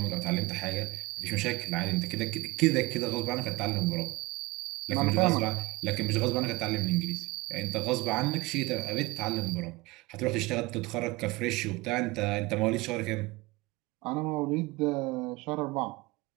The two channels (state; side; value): quieter; left; 22.5 dB